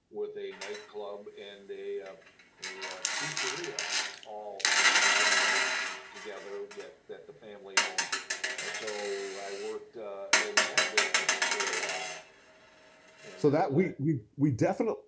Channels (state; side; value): identical; both; correlation 1.00